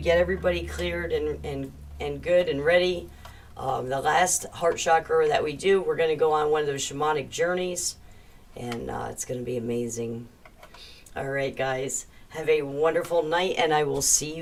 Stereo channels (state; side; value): identical; both; correlation 1.00